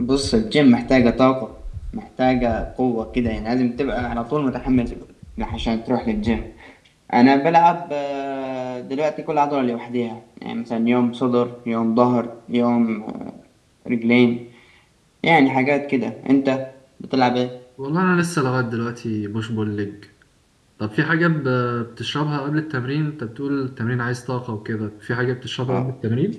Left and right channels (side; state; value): both; identical; correlation 1.00